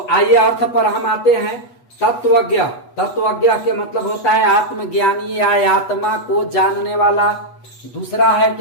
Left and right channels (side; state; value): right; late; 8.2 ms